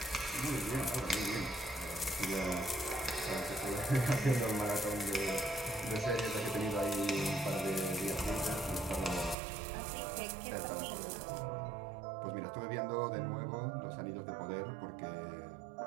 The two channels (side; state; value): left; drops out; at 9.3 s